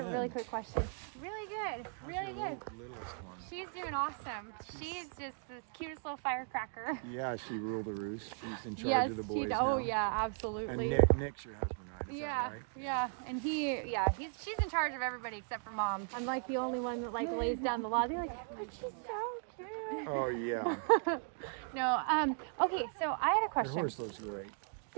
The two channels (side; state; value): left; silent; 53 dB below the other